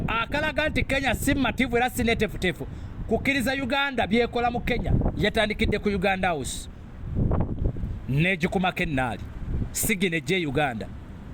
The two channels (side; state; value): both; identical; correlation 1.00